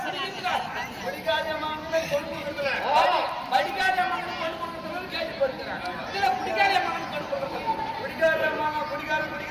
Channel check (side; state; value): both; identical; correlation 1.00